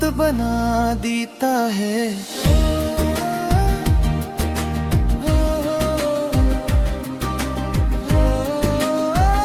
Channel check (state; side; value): identical; both; correlation 1.00